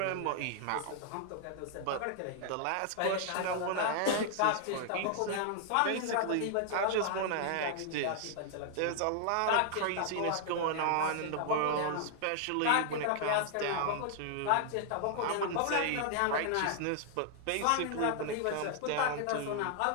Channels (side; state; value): both; different; correlation 0.00